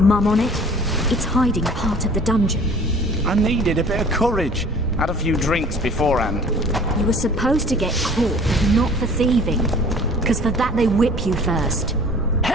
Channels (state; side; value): noise; right; rumble, 9 dB below the sound